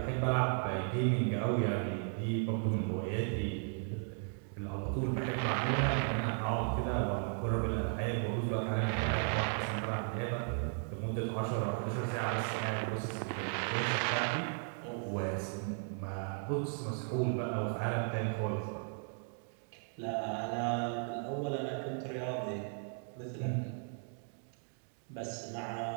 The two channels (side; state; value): left; silent; 54 dB below the other